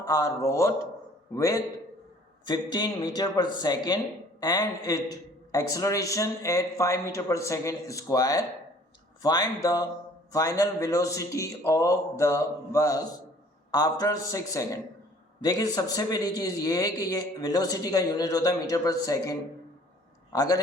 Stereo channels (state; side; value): normal; both; correlation 0.54